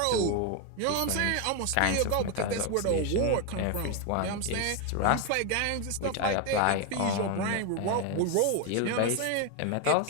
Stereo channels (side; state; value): both; different; correlation 0.01